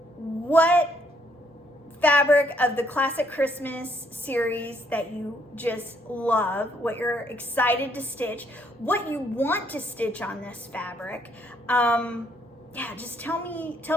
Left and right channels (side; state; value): both; normal; correlation 0.70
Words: what fabric of the classic Christmas series that you just love, what you're excited to stitch, what you want to stitch on this fabric. Yeah, just tell me